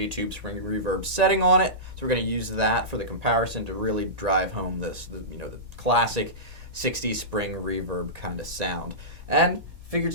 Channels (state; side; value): late; left; 1.9 ms